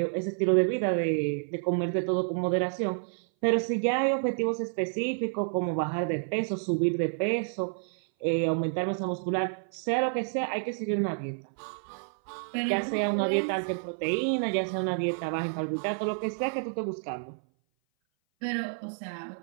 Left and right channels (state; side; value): silent; left; 57 dB below the other